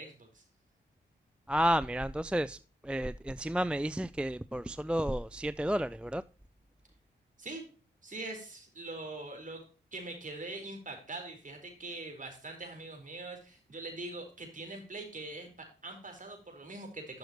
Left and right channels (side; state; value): both; normal; correlation 0.85